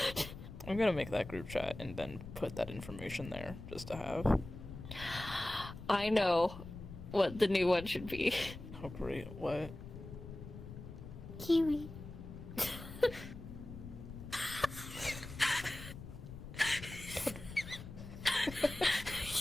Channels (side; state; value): left; noise; rumble, 12 dB below the sound